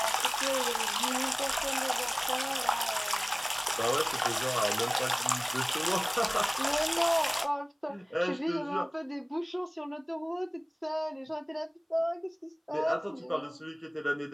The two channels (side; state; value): both; identical; correlation 1.00